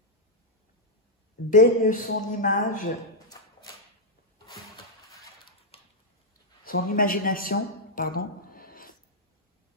baigne son image, son imagination, pardon,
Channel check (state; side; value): normal; both; correlation -0.03